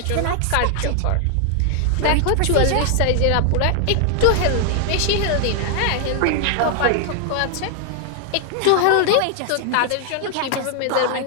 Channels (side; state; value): both; different; correlation 0.00